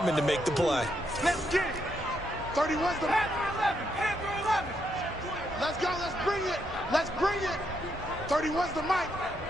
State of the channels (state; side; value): normal; both; correlation 0.78